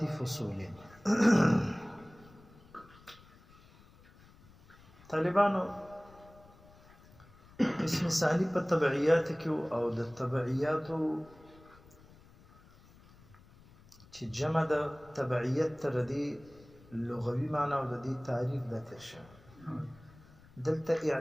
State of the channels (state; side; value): noise; left; rumble, 24 dB below the sound